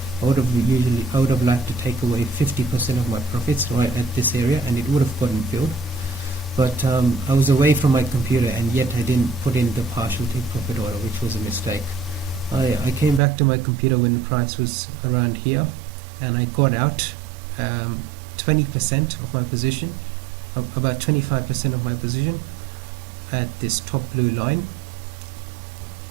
I would have liked to take away 50% of my profits right at this area, and it would have gotten filled. But I was away from my computer, and yet I didn't put in the partial take profit order, which was a mistake. I came back to my computer when the price was around here, and I got out 20% of my position, about 25% of my position at this top blue line.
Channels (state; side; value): drops out; left; at 13.2 s